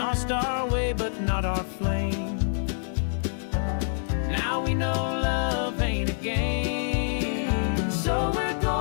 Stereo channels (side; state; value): right; silent; digital silence